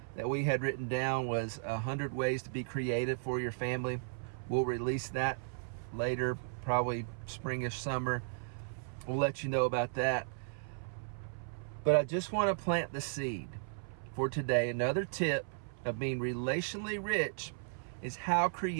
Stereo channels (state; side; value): silent; left; 54 dB below the other